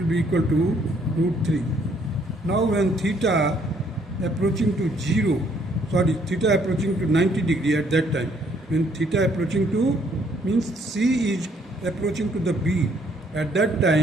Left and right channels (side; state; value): both; normal; correlation 0.66